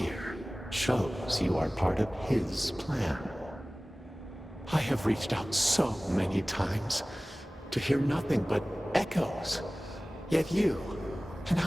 shows you are part of his plan. I have reached out so many times to hear nothing but echoes, yet you, an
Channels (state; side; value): normal; both; correlation 0.98